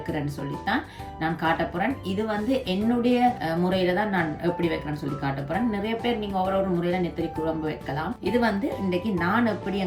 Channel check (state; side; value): identical; both; correlation 1.00